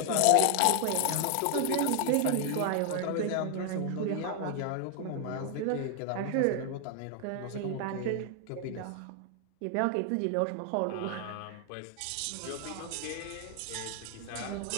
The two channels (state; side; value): different; both; correlation 0.00